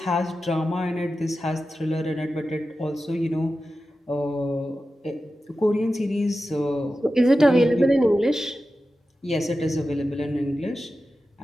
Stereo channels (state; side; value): normal; both; correlation 0.93